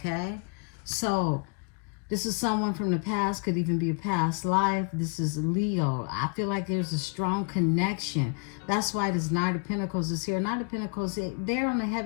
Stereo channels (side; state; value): right; quieter; 36.7 dB